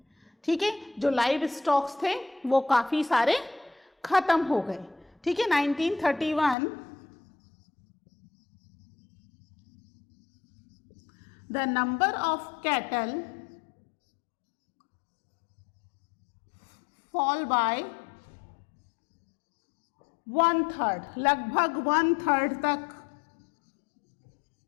ठीक है, जो लाइव स्टॉक्स थे वो काफी सारे खत्म हो गए। ठीक है, 1931 the number of cattle fall by 1/3, लगभग 1/3 तक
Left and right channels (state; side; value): drops out; right; at 6.6 s